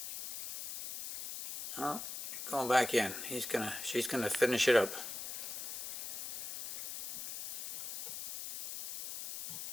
Oh, going back in. She's gonna finish it up.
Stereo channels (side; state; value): left; noise; hiss, 7 dB below the sound